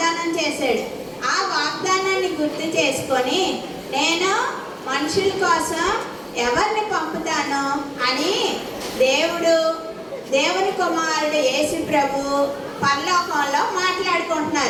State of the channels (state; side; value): identical; both; correlation 1.00